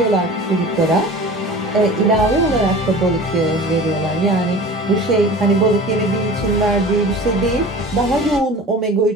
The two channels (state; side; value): normal; both; correlation 0.39